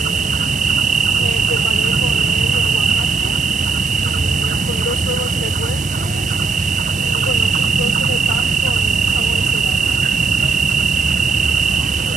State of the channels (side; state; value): left; quieter; 4.5 dB